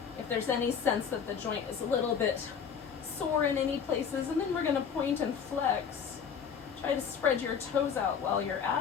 if there's any sense that the joint is a little bit sore in any places. And then we're gonna point and flex. Try to spread your toes out while you're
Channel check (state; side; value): quieter; right; 7.0 dB